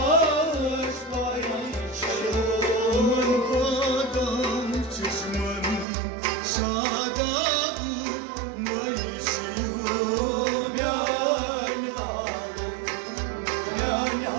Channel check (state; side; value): drops out; left; at 5.9 s